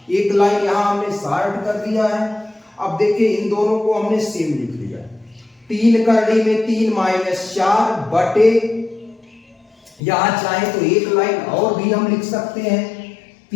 एक लाइन यहाँ हमने शॉर्ट कर दिया है। अब देखिए इन दोनों को हमने सेम लिख लिया, 3 करड़ी में 3 -4 बटे, यहां चाहे तो एक लाइन और भी हम लिख सकते हैं,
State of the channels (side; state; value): right; drops out; at 10.0 s